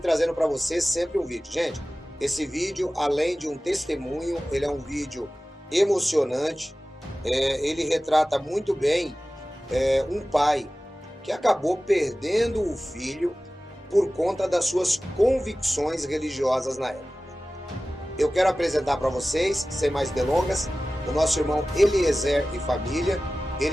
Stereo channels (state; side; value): normal; both; correlation 0.96